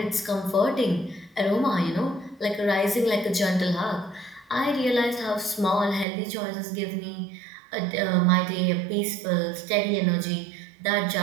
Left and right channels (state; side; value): drops out; left; at 6.1 s